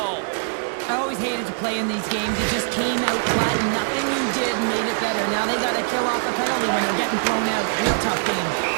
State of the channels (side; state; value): left; silent; digital silence